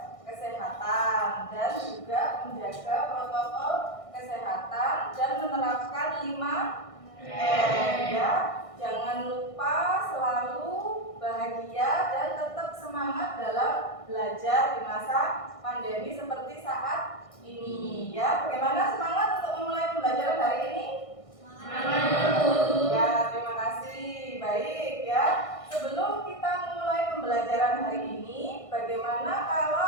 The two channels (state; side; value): late; right; 1.6 ms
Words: kesehatan dan juga menjaga protokol kesehatan dan menerapkan 5M ya. Jangan lupa selalu bahagia dan tetap semangat dalam belajar di masa pandemi seperti saat ini ya. Bagaimana semangat untuk memulai pembelajaran hari ini? Ya, terima kasih. Baik ya. Sebelum kita memulai pembelajaran hari ini, bagaimana